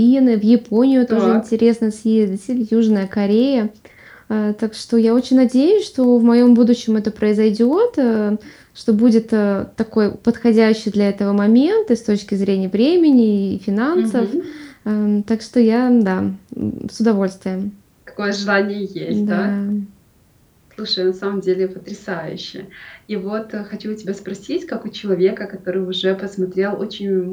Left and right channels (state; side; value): identical; both; correlation 1.00